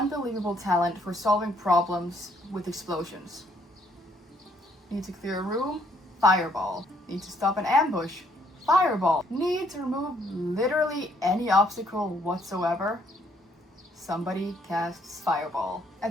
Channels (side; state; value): both; normal; correlation 0.68